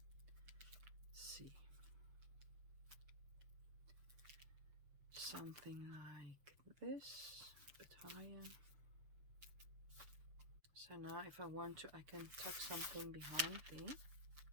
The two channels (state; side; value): late; left; 6.6 ms